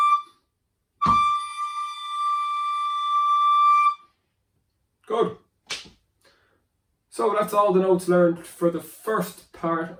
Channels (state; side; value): identical; both; correlation 1.00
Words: Good. So that's all the notes learned for the first part